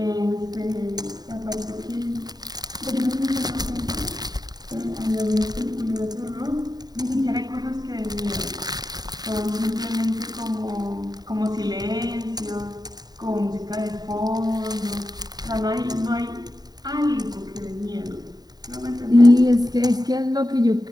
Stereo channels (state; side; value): late; left; 0.19 ms